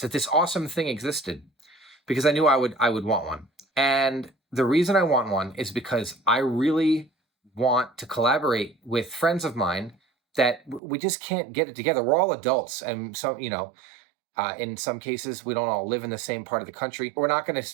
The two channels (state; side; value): drops out; left; at 10.8 s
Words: that this awesome thing existed, because I knew I would want one. And the reason I want one is because I really want to collaborate with friends of mine that we just can't get it together. We're all adults, and so in some cases we don't all live in the same part of the country. We're not going to